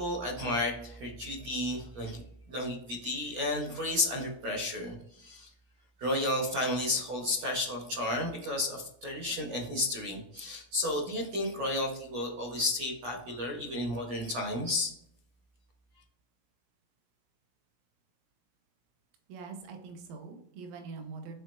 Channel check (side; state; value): left; late; 17 ms